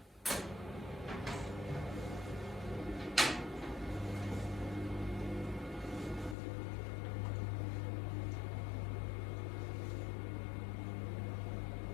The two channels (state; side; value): drops out; right; at 6.4 s